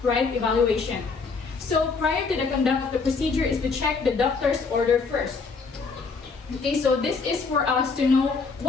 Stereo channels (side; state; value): right; quieter; 4.6 dB